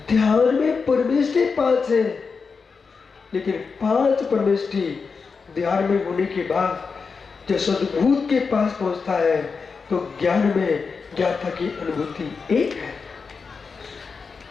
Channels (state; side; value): quieter; right; 5.1 dB